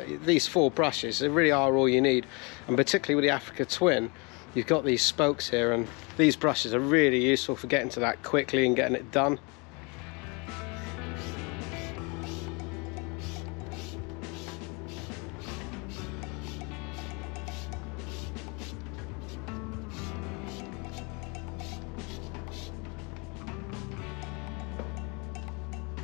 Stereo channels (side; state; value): right; quieter; 30.2 dB